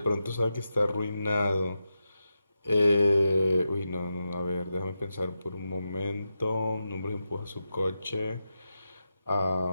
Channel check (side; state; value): both; inverted; correlation -0.89